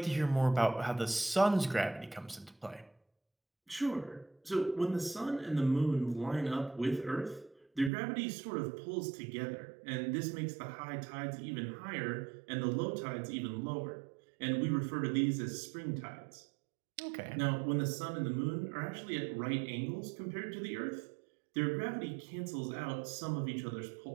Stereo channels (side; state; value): left; drops out; at 7.9 s